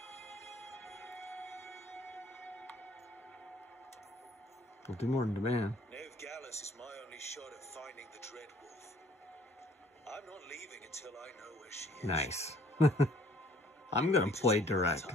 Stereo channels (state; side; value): normal; both; correlation 0.57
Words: We'll do more than demand. Ned Gallus is my only shot at finding the Dreadwolf. I'm not leaving until I know where she is. Nice. I'm gonna play direct. By